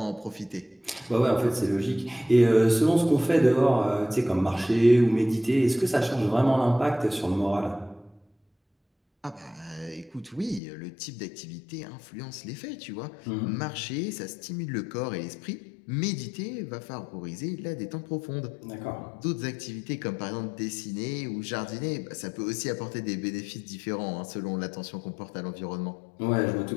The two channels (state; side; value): drops out; right; at 10.6 s